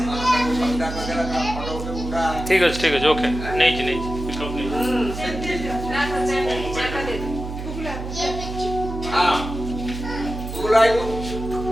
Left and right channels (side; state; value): right; noise; hum, 7 dB below the sound